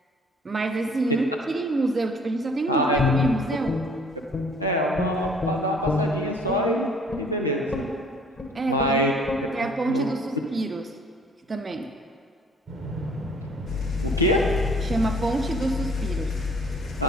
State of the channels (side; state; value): both; normal; correlation 0.55